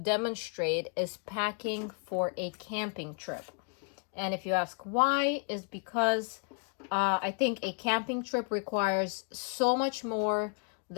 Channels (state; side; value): quieter; right; 39.7 dB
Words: is packing for a camping trip. And if you ask why, is because I think a camping trip requires so much more